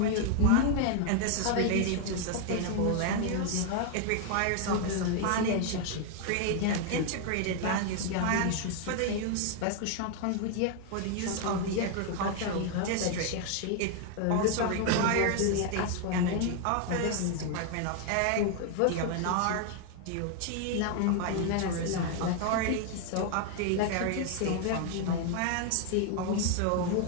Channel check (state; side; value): different; both; correlation 0.00